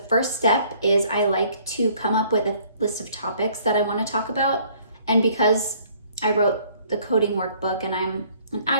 first step is I like to come up with a list of topics that I want to talk about. And because I wrote the Coding Workbook and I'm an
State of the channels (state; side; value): inverted; both; correlation -0.59